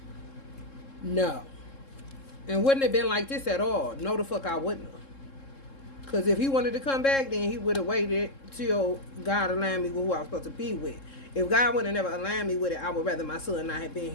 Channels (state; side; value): late; right; 3.7 ms